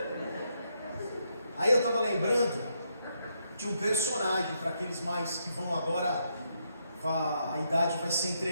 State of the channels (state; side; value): inverted; both; correlation -0.78